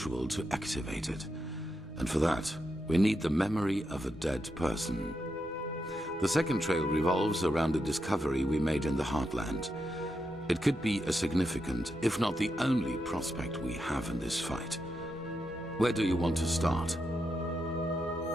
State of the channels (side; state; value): both; normal; correlation 0.85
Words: to activate it. And for that, we need the memory of a dead person. The second trail revolves around a discovery we made in the Heartland. It could be a significant, if not the only prospect we have in this fight. Where do you want to start?